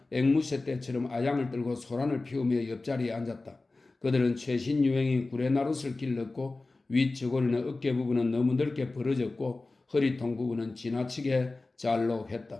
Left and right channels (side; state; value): right; quieter; 3.3 dB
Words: 앵무새 떼처럼 아양을 들고 소란을 피우며 옆자리에 앉았다. 그들은 최신 유행인 구레나룻을 길렀고 윗저고리는 어깨 부분은 너무 넓게 벌어졌고 허리통 부분은 지나치게